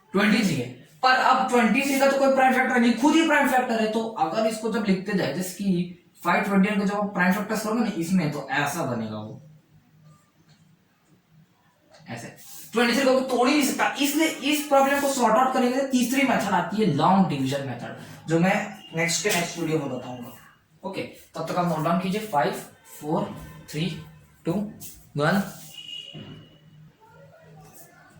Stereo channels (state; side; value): identical; both; correlation 1.00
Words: 23 है, पर अब 23 का तो कोई प्राइम फैक्टर नहीं, खुद ही प्राइम फैक्टर है। तो अगर इसको जब लिखते जाए, जैसे कि 529 को जब प्राइम फैक्टर्स करोगे ना इसमें, तो ऐसा बनेगा वो, ऐसे 23 को तोड़ ही नहीं सकता। इसलिए इस प्रॉब्लम को सॉर्ट आउट करने के लिए तीसरी मेथड आती है, लॉन्ग डिवीजन मेथड, जो मैं नेक्स्ट वीडियो में बताऊंगा। ओके, तब तक आप नोट डाउन कीजिए 5 4 3 2 1।